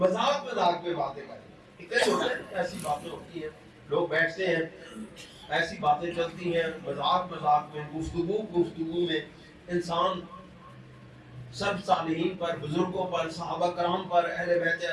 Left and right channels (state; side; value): identical; both; correlation 1.00